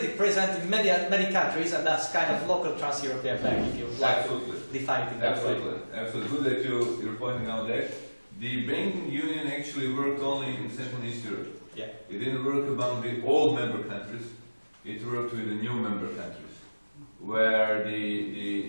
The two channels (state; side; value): inverted; both; correlation -1.00